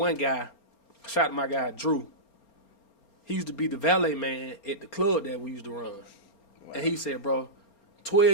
guy, shout out to my guy, Drew. He used to be the valet man at the club that we used to run. Wow. And he said, bro,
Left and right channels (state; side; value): late; right; 4.3 ms